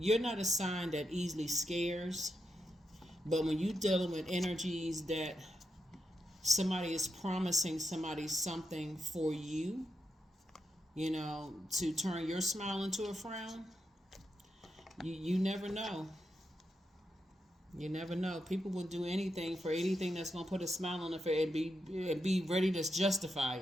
not a sign that easily scares. But when you're dealing with energies that somebody is promising somebody something for you, you know, to turn your smile into a frown, you never know. You never know. People will do anything for anything that's going to put a smile on their face and be ready to justify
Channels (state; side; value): normal; both; correlation 0.85